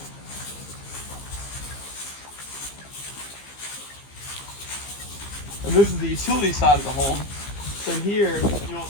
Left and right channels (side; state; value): right; late; 15 ms